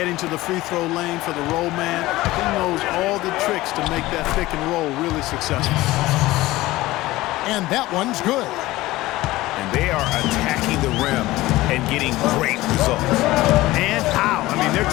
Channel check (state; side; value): quieter; right; 18.0 dB